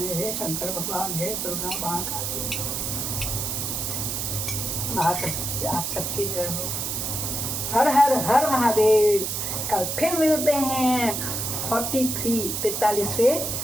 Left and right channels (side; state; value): right; noise; hiss, 2 dB below the sound